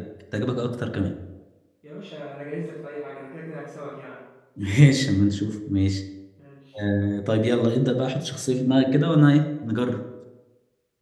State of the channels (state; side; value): identical; both; correlation 1.00